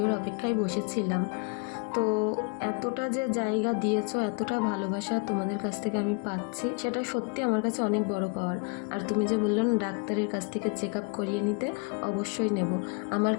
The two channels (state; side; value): quieter; right; 34.4 dB